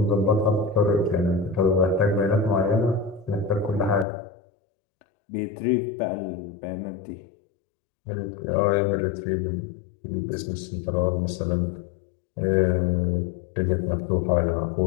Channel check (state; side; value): drops out; right; at 4.0 s